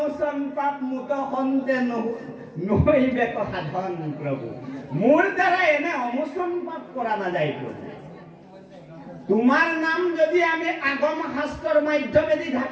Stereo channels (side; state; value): both; identical; correlation 1.00